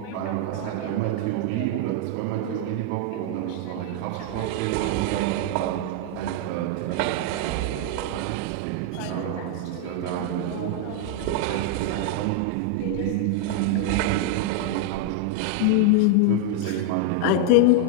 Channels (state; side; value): different; both; correlation 0.00